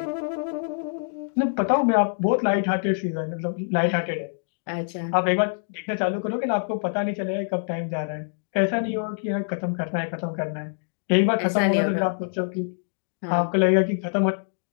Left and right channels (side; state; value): right; silent; digital silence